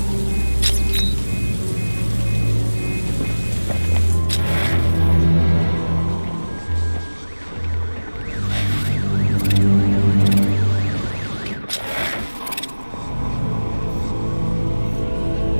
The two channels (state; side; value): inverted; both; correlation -1.00